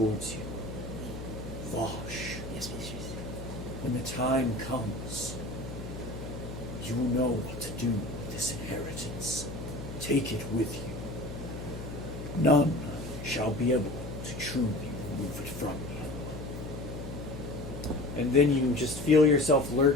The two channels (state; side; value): noise; left; hum, 9 dB below the sound